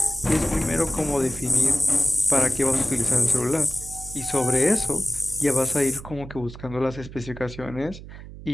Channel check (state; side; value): noise; right; hum, 14 dB below the sound